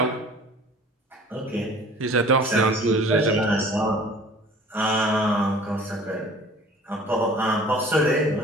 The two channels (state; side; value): normal; both; correlation 0.47